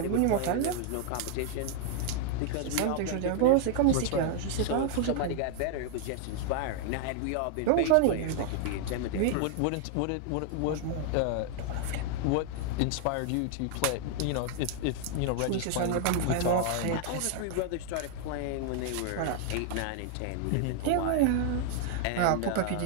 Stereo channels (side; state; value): both; different; correlation 0.00